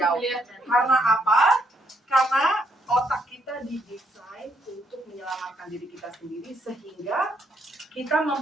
Karena apa? Karena otak kita didesain untuk menyelamatkan diri kita sendiri, sehingga kita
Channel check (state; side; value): normal; both; correlation 0.74